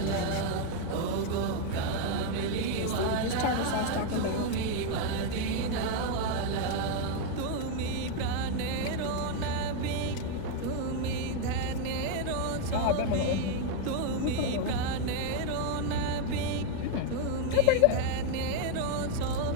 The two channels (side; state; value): both; different; correlation 0.01